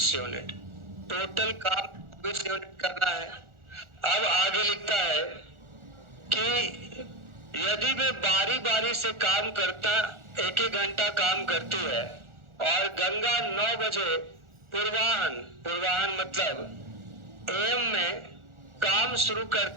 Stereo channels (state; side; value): late; left; 1.4 ms